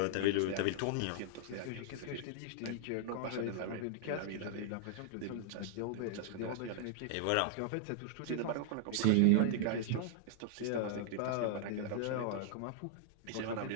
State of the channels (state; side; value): different; both; correlation -0.01